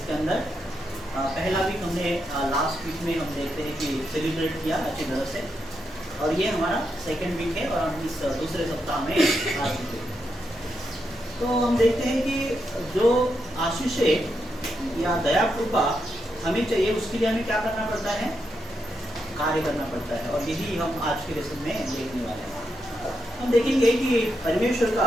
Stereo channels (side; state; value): both; normal; correlation 0.83